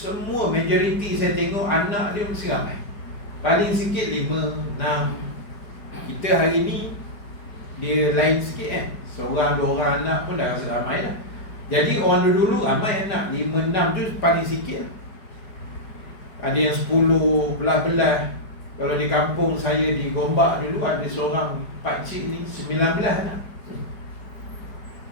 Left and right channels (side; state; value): right; late; 4.9 ms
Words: majoriti saya tengok anak dia mesti ramai. Paling sikit 5, 6. Kita hari ni dia lain sikit kan, seorang 2 orang anak pun dah rasa ramai dah. Jadi orang dulu ramai anak, 5, 6 tu paling sikit lah. Ada yang 10, belah-belah. Kalau di kampung saya di Gombak dulu, ada seorang pakcik ni 19 anak.